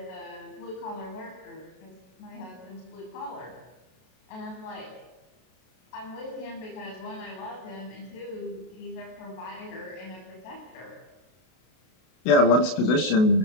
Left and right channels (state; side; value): late; right; 32 ms